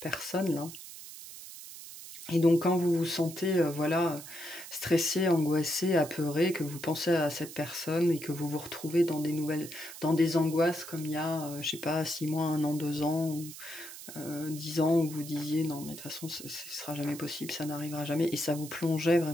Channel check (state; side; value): noise; right; hiss, 13 dB below the sound